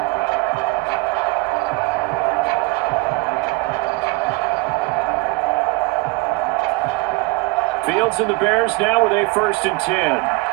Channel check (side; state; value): left; quieter; 23.4 dB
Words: Fields and the Bears now with a 1st and 10